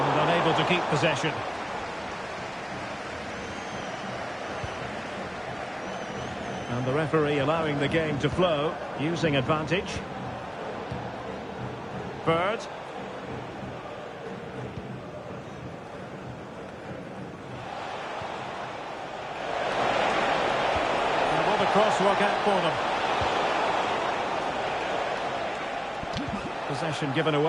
unable to keep possession. And the referee allowing the game to flow, using advantage. Bird. And will the cross work out for them? Possession given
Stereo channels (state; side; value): identical; both; correlation 1.00